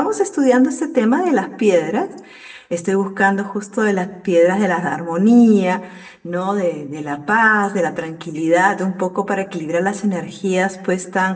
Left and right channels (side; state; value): both; identical; correlation 1.00